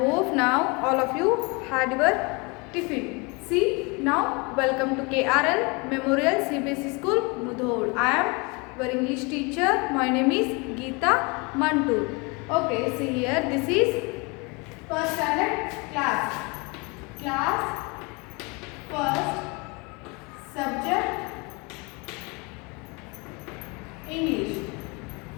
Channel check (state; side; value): quieter; right; 28.9 dB